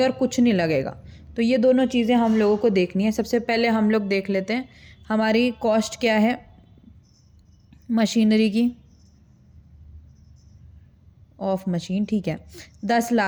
और कुछ नहीं लगेगा। तो ये दोनों चीज़ें हम लोगों को देखनी है। सबसे पहले हम लोग देख लेते हैं हमारी कॉस्ट क्या है मशीनरी की, ऑफ मशीन, ठीक है, 10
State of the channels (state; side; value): identical; both; correlation 1.00